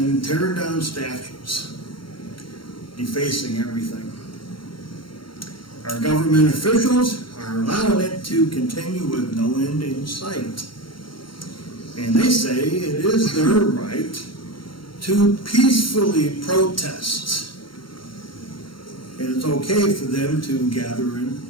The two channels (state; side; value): late; right; 0.73 ms